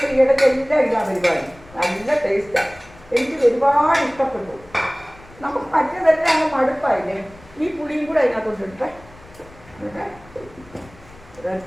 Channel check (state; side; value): noise; left; rumble, 23 dB below the sound